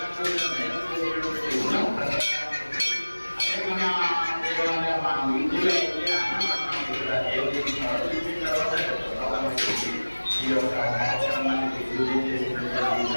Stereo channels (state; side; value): inverted; both; correlation -1.00